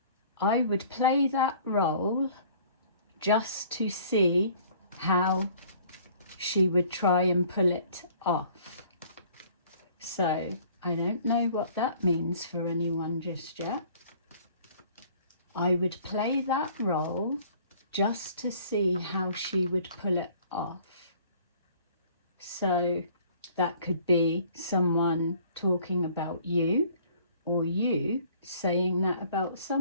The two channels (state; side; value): inverted; both; correlation -0.55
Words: I would play that role just to see how she would try and pull it off. So I don't know what that means for anyone just yet. I would play that role just to see how she would pull it off. So that could be someone talking about you, or you saying that about